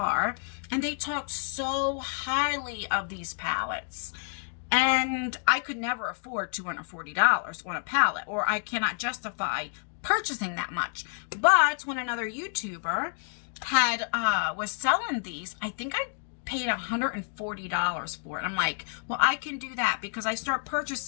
And they talked so highly of these palettes. And I could never afford $240 on a palette. Or I cannot justify purchasing that much. But when another YouTuber was selling these, I think I paid $140 for it. I'm like, well, I can do that because I start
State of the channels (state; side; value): silent; right; 58 dB below the other